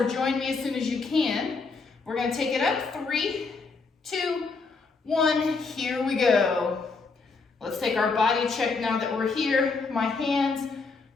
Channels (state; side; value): quieter; right; 4.3 dB